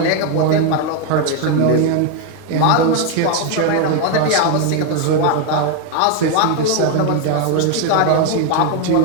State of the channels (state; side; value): different; both; correlation 0.01